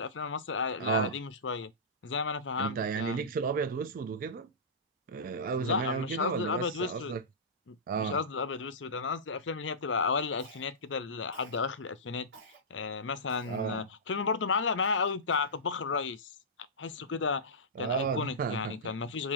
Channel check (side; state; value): both; normal; correlation -0.17